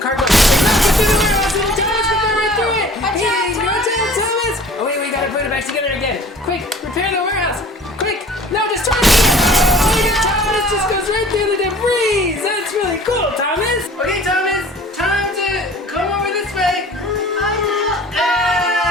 Get through the warehouse. And Thomas can go right through it. Hey, go down, Thomas. Oh wait, we gotta put it back together again. Quick, repair the warehouse. Quick. No, destroy it. Oh, look at Thomas just goes right through the debris. That's really cool, Thomas. Okay, Thomas. Time to come over this way. I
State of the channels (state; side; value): normal; both; correlation 0.48